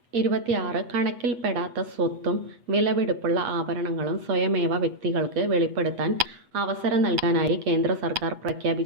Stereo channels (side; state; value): left; late; 8.2 ms